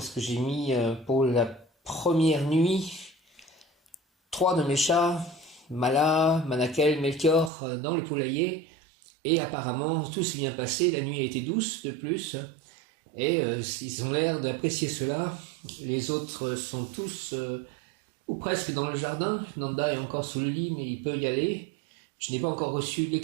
que j'ai mis pour la première nuit 3 de mes chats, Mala, Manakel, Melchior, dans le poulailler. Et apparemment, tout s'est bien passé. La nuit a été douce de plus. Et ils ont l'air d'apprécier cela. Les autres sont tous ou presque dans le jardin. Nanda est encore sous le lit, mais il peut y aller. Je n'ai pas encore reçu les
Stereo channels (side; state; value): left; drops out; at 7.5 s